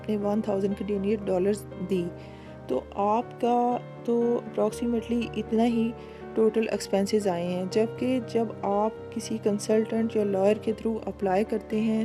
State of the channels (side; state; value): both; identical; correlation 1.00